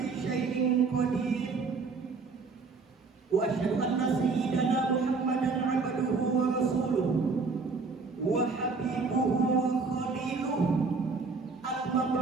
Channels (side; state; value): left; quieter; 4.4 dB